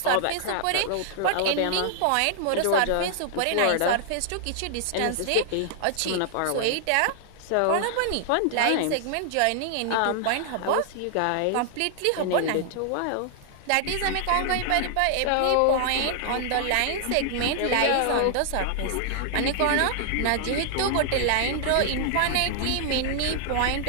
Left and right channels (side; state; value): both; different; correlation -0.01